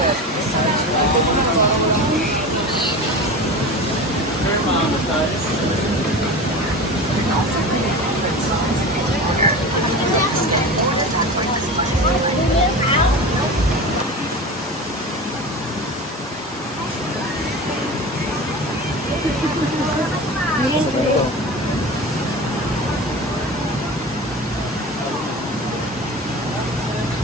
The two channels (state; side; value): normal; both; correlation 0.30